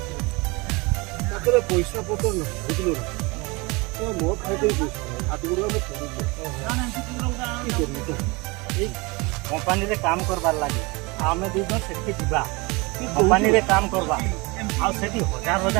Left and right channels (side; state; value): left; quieter; 26.2 dB